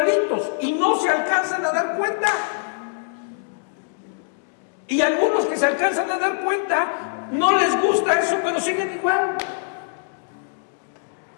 y no se alcanzan a dar cuenta. Y algunos que se alcanzan a dar cuenta, no les gusta eso, pero siguen igual.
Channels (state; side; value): silent; right; digital silence